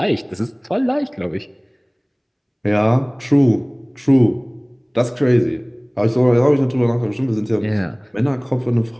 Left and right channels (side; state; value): both; identical; correlation 1.00